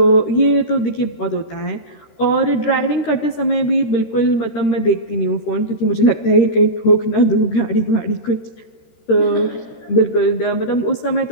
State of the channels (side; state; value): right; late; 13 ms